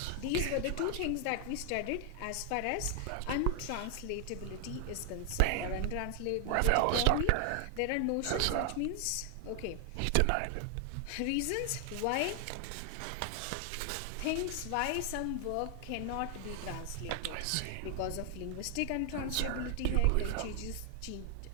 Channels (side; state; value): both; different; correlation 0.00